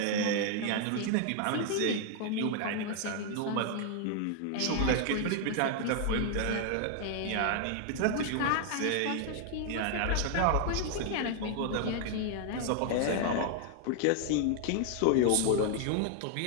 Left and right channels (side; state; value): both; different; correlation 0.00